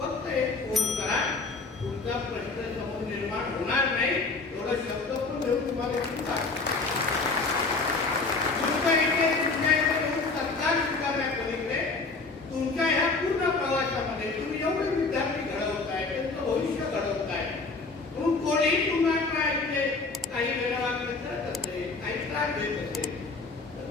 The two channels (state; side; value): quieter; right; 3.9 dB